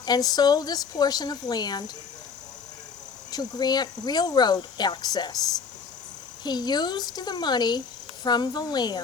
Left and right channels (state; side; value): quieter; right; 5.8 dB